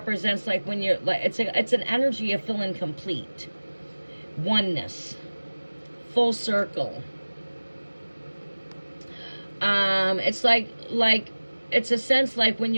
like when you're, like, it's an energy of feeling complete. Oneness. Full circle. It's like, it's a sense like when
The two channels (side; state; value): both; inverted; correlation -1.00